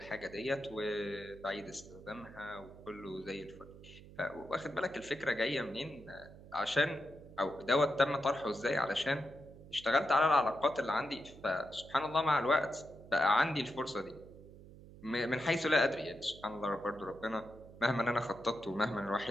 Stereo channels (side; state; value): right; noise; hum, 18 dB below the sound